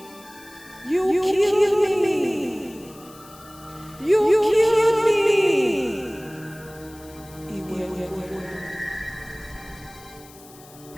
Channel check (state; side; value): noise; left; hiss, 22 dB below the sound